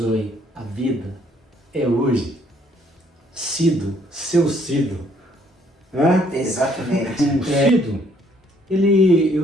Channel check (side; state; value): both; normal; correlation 0.65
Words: a vida é hoje. Cido, seu Cido. Hã? Exatamente. Cido,